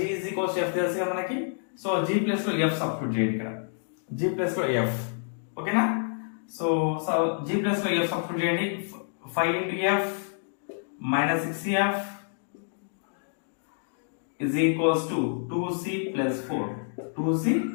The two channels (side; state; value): right; silent; digital silence